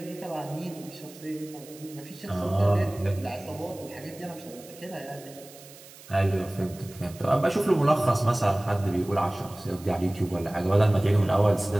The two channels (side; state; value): right; noise; hiss, 20 dB below the sound